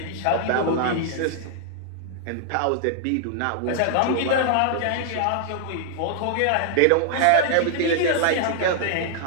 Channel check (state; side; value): different; both; correlation -0.01